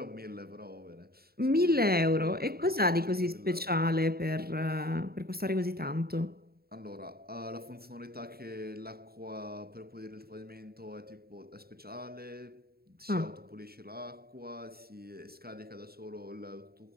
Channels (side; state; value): left; late; 0.45 ms